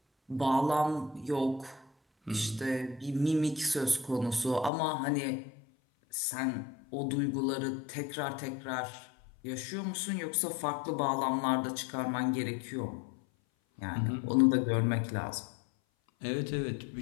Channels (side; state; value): right; drops out; at 4.7 s